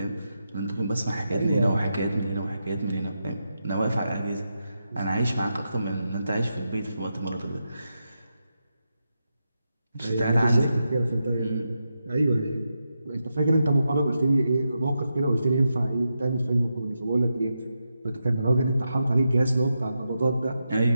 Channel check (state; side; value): inverted; both; correlation -0.87